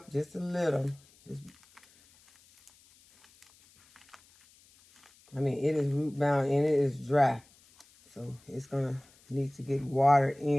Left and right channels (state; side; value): noise; left; hiss, 29 dB below the sound